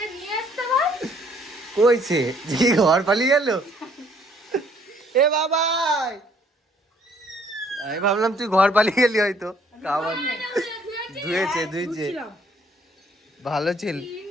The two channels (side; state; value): both; normal; correlation 0.62